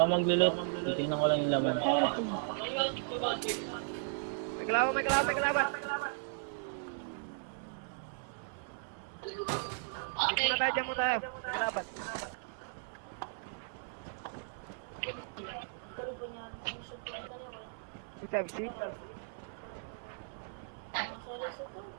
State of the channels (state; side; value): silent; left; 54 dB below the other